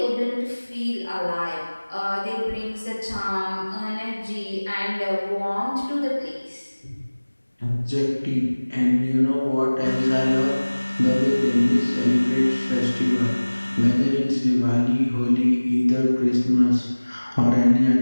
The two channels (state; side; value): inverted; both; correlation -1.00